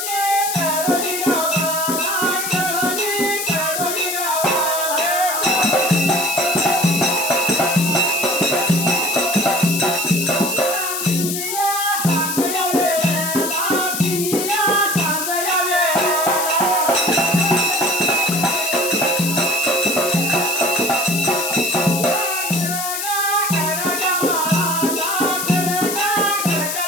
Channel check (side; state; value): left; noise; hiss, 3 dB below the sound